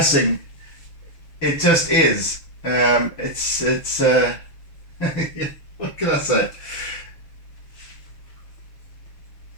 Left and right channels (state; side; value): late; right; 6.6 ms